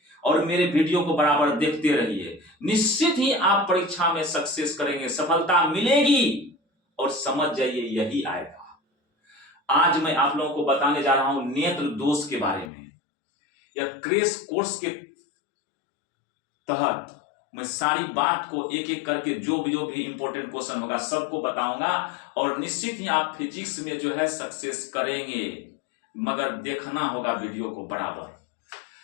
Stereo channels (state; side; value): drops out; right; at 12.7 s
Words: और मेरे वीडियो को बराबर देखते रहिए। निश्चित ही आप परीक्षा में सक्सेस करेंगे, सफलता मिलेगी, और समझ जाइए यही आएगा। आज मैं आप लोगों को बताने जा रहा हूं नेत्र दोष के बारे में। या क्रैश कोर्स के तहत मैं सारी बात को एक एक करके जो भी इंपॉर्टेंट क्वेश्चन होगा सबको बताऊंगा, और निश्चित ही आप फिजिक्स में जो है सक्सेस करेंगे, मगर देखना होगा वीडियो को बराबर।